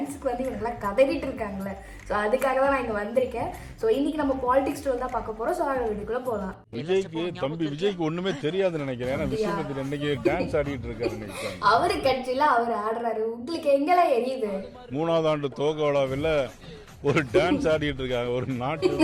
வந்து இவங்கெல்லாம் கதறிட்டு இருக்காங்களே. ஸோ அதுக்காக தான் நான் இங்க வந்திருக்கேன். ஸோ இன்னைக்கு நம்ம பாலிடிக்ஸ் ஸ்டோர் தான் பார்க்க போறோம். ஸோ அந்த வீடியோக்குள்ள போகலாம். விஜய்க்கு ஒண்ணுமே தெரியாதுன்னு நினைக்கிறேன். ஏன்னா விஸ்வநாதன் இன்னைக்கு டான்ஸ் ஆடிட்டு இருக்காரு. அவரு கட்சியில அவர் ஆடுறாரு. உங்களுக்கு எங்கெல்லாம் எரியுது? 3வது ஆண்டு துவக்க விழாவில் ஒரு டான்ஸ் ஆடிட்டு இருக்காங்க. ஒரு நாட்டு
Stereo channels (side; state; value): both; identical; correlation 1.00